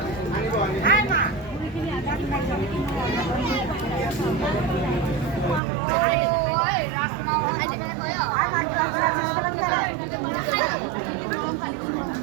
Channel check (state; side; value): drops out; left; at 5.6 s